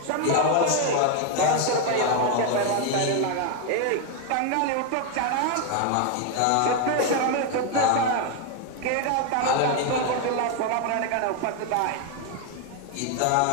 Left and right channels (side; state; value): both; different; correlation 0.01